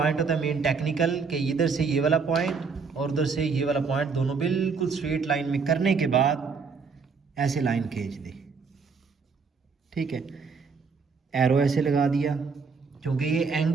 होता है मेन टेक्निकल कि इधर से ये वाला पॉइंट और उधर से ये वाला पॉइंट दोनों बिल्कुल स्ट्रेट लाइन में करने के बाद ऐसे लाइन खींच दी, ठीक है। एरो ऐसे लगा दिया, क्योंकि ये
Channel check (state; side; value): quieter; left; 5.2 dB